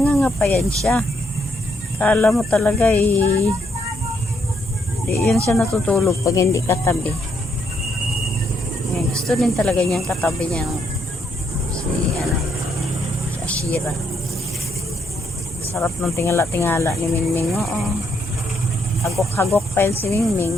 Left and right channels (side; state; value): both; normal; correlation 0.75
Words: pa yan siya. Akala mo talaga eh. Di yan siya natutulog pag hindi katabi. Ayan, gusto din talaga niyang katabi niya si Ashira. Sarap ng tingala-tingala ni Mingming. Oo. Hagok-hagok pa yan si